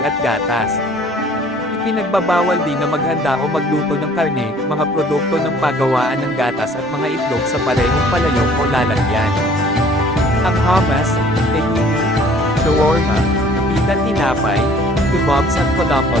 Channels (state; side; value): normal; both; correlation 0.54